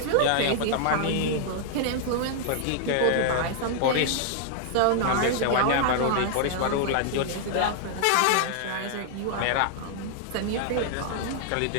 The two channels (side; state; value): both; different; correlation 0.00